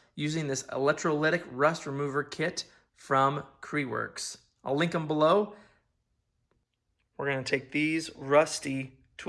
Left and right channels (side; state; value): both; identical; correlation 1.00